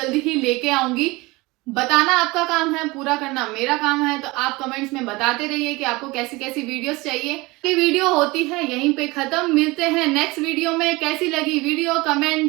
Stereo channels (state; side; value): quieter; left; 22.7 dB